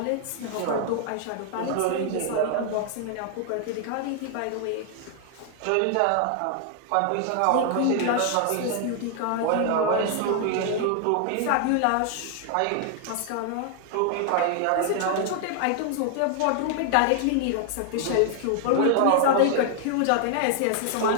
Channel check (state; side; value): different; both; correlation 0.00